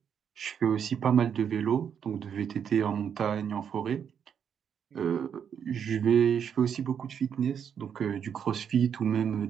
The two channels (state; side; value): quieter; left; 7.9 dB